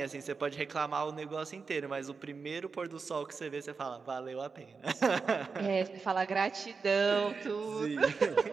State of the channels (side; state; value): left; quieter; 4.9 dB